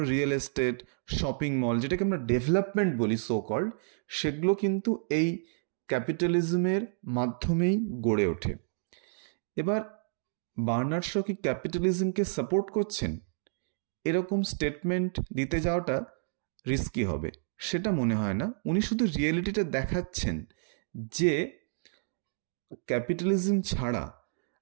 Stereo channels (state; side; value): silent; left; digital silence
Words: রিয়েল এস্টেট, শপিং মল, যেটাকে আমরা ডেভেলপমেন্ট বলি সো কল্ড, সেগুলো কিন্তু এই ক্যাপিটালিজমের মাধ্যমেই গড়ে ওঠে। এবার বার্নার্ড শ কি ক্যাপিটালিজমকে সাপোর্ট করছেন? এরকম স্টেটমেন্ট দিতে যাওয়াটা রিস্কি হবে সেটা মনে হয় না। উনি শুধু রিয়েলিটিটা দেখাচ্ছেন যে ক্যাপিটালিজম ছাড়া